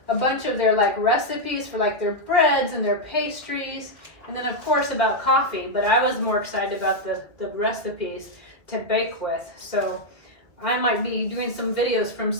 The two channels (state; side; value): late; right; 1.8 ms